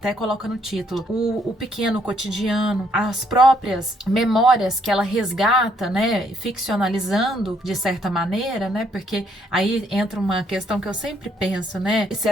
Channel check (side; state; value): both; normal; correlation 0.70